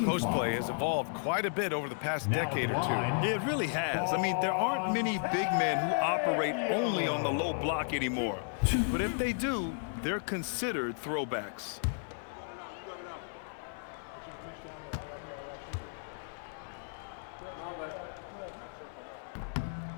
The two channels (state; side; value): silent; right; 55 dB below the other